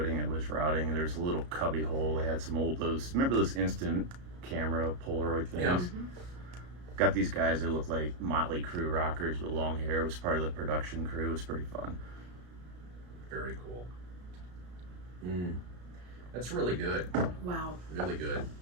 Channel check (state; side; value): late; left; 33 ms